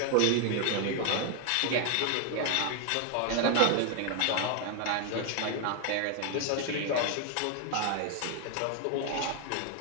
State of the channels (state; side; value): different; both; correlation 0.01